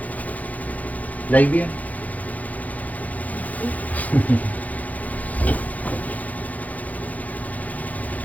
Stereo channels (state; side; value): late; right; 0.076 ms